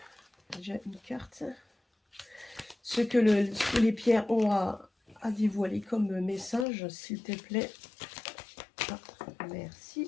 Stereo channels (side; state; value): right; drops out; at 6.7 s